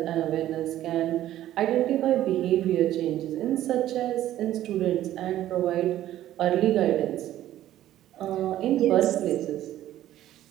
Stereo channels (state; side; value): quieter; left; 13.1 dB